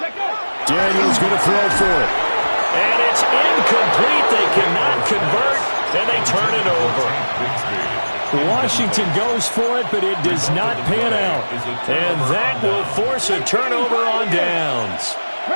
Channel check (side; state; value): both; inverted; correlation -1.00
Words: Daniels going to throw for it. And it's incomplete. They cannot convert, and they turn it over. Washington goes for it, but it does not pan out. And that will force a turnover on downs.